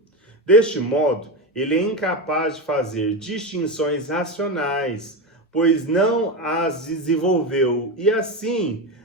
Deste modo, ele é incapaz de fazer distinções racionais, pois não as desenvolveu e, assim,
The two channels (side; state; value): both; normal; correlation 0.16